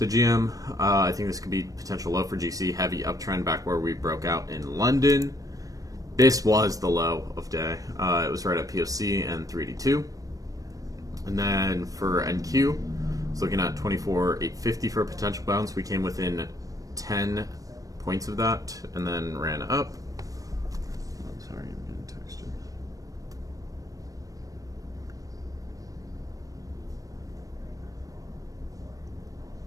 GM, I think this could be potential low for GC. Heavy uptrend back where we broke out in London. This was the low of day. It was right at POC and 382. And then for NQ, it's looking at 24,850 for a potential bounce. We came within 10 points of that and then ran up. Sorry, I'm getting texted.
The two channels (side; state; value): left; late; 0.17 ms